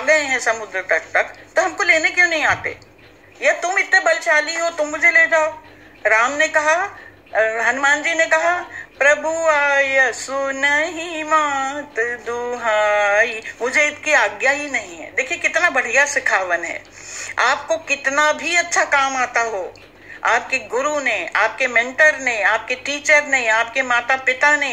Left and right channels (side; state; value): both; identical; correlation 1.00